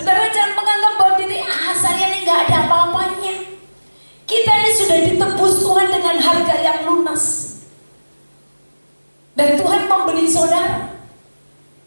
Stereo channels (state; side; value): inverted; both; correlation -1.00